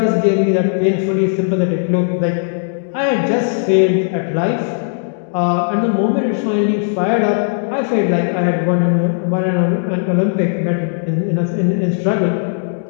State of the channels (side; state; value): right; silent; digital silence